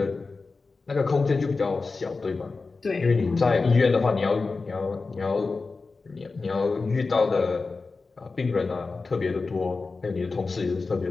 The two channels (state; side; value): quieter; right; 4.0 dB